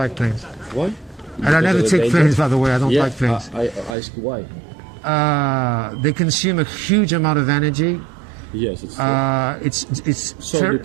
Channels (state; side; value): drops out; left; at 4.0 s